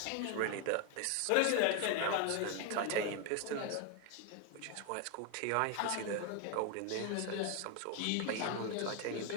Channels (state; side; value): different; both; correlation 0.01